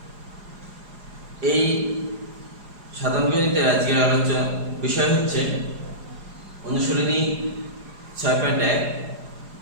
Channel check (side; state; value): left; late; 4.9 ms